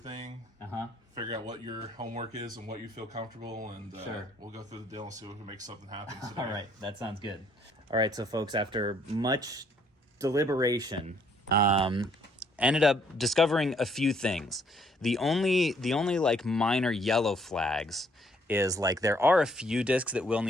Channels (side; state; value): both; normal; correlation 0.65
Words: figure out what your homework is and what you feel comfortable, and we'll go through the deal and see if we can make something happen today. All right, that sounds good. All right, so folks, after much deliberation, ended up discovering a few things. The only like minor yellow flags is like there are a few discs that will